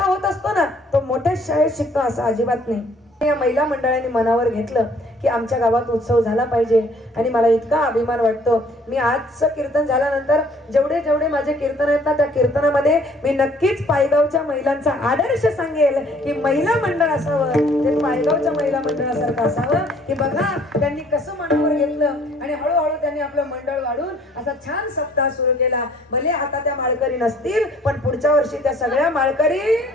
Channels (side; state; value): both; normal; correlation 0.59